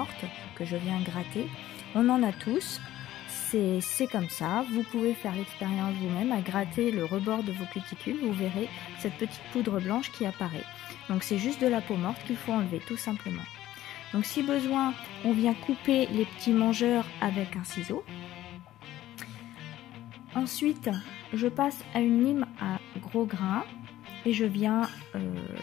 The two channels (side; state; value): right; quieter; 14.1 dB